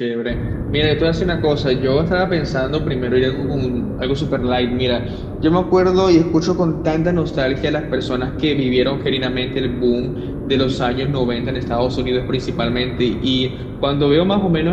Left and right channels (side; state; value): both; identical; correlation 1.00